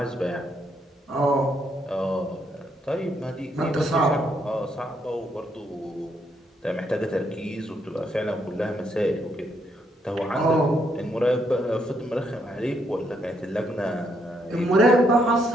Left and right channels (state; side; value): normal; both; correlation 0.75